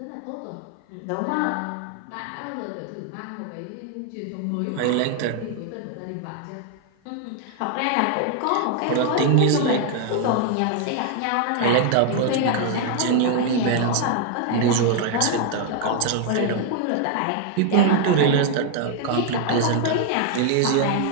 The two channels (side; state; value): both; different; correlation 0.00